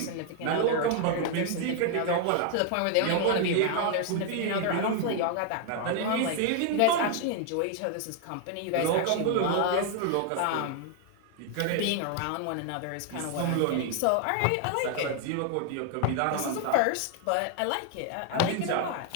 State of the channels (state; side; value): different; both; correlation 0.00